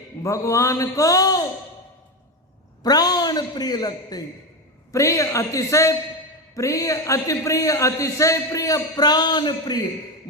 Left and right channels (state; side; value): normal; both; correlation 0.15